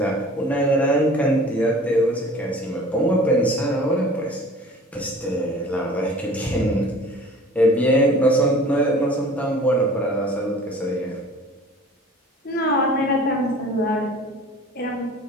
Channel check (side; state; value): both; normal; correlation 0.45